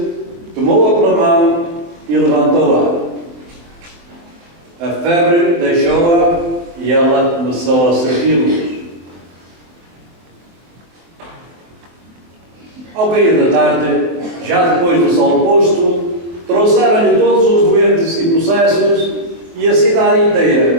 tomou-a pela mão e levantou-a. A febre deixou-a e ela começou a servi-los. Ao cair da tarde, já depois do sol posto, trouxeram-lhe todos os doentes e possessos e a cidade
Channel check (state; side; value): late; left; 23 ms